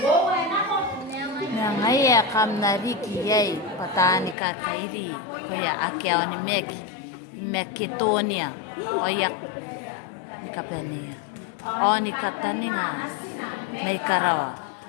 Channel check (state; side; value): drops out; right; at 4.4 s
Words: Wo enak kok. Yang ayah kam nariki yai patani kakairi kaya akyao ni Macedonia oyak kapani. O ni katani nga may karawa